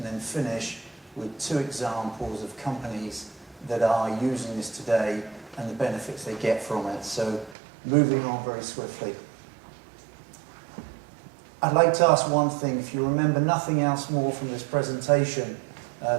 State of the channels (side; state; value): left; drops out; at 7.6 s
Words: then finish with two examples of companies that are using this today and the benefits they get from it. So moving on very swiftly. I'd like to ask one thing. If you remember nothing else more from this presentation